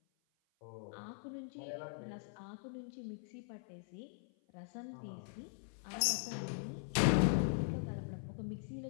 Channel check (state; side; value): silent; right; 50 dB below the other